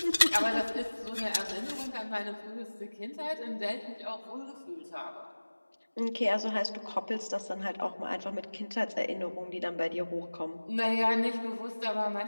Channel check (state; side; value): inverted; both; correlation -1.00